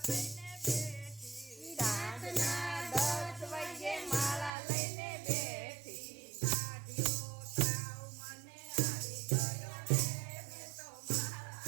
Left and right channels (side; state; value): left; drops out; at 4.5 s